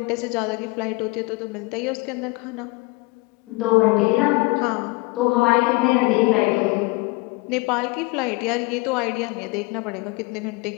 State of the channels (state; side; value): quieter; right; 25.7 dB